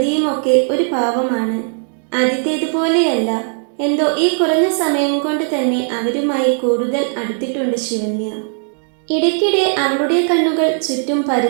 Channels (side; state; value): left; silent; 60 dB below the other